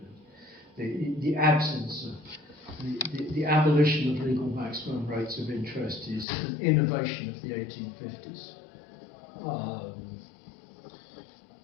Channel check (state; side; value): drops out; right; at 6.2 s